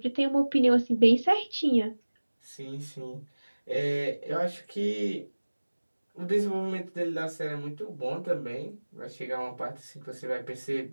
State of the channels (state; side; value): inverted; both; correlation -1.00